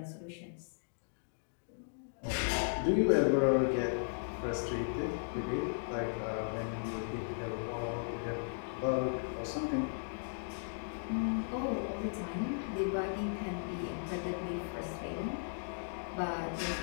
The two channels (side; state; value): right; silent; digital silence